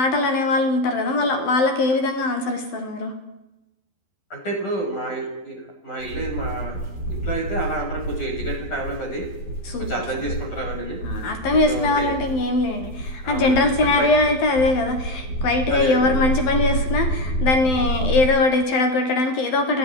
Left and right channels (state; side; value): late; right; 12 ms